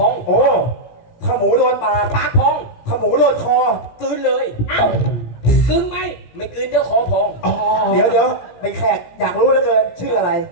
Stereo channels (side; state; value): right; late; 17 ms